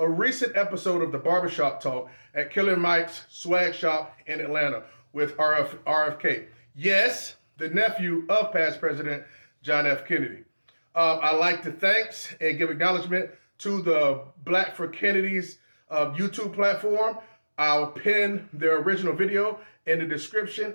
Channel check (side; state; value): both; inverted; correlation -1.00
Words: recent episode of the Barbershop Talk at Killer Mike's swag shop in Atlanta with RFK. Yes, the nephew of past President John F. Kennedy. I'd like to thank and give acknowledgement to the Black for Kennedy's YouTube platform. I'll pin their original video in the